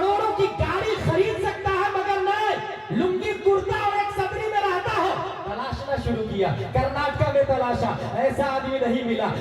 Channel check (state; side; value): identical; both; correlation 1.00